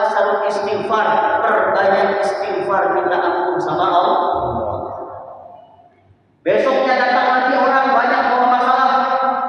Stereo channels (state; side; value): identical; both; correlation 1.00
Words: istighfar, perbanyak istighfar, minta ampun sama Allah. Besoknya datang lagi orang banyak bawa masalah,